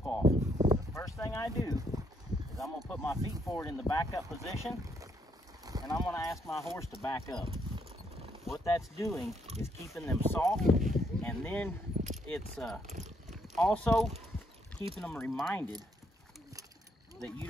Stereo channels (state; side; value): normal; both; correlation 0.73